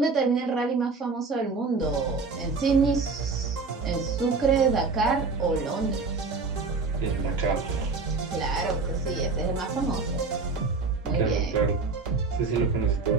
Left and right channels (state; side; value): quieter; left; 4.2 dB